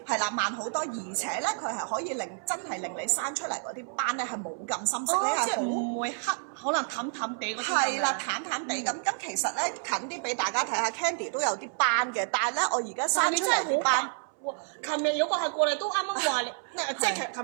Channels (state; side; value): silent; left; 58 dB below the other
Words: 係啦，慢好多，而且咧佢係可以真係令你生出嚟嗰啲斑咧係冇咁深色，你係唔會黑，可能淡淡地嗰啲。係啦，淡地。咁其實咧近啲俾大家睇下 ，Candy 都有啲斑嘅，但係咧我而家生出嚟啲斑，琴日有個客過嚟都啱啱話你，即係